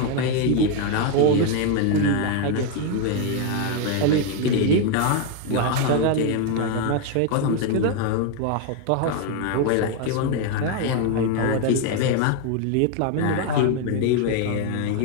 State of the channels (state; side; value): different; both; correlation 0.01